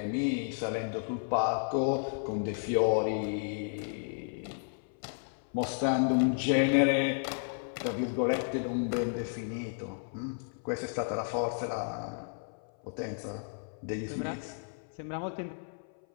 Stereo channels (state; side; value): silent; right; 56 dB below the other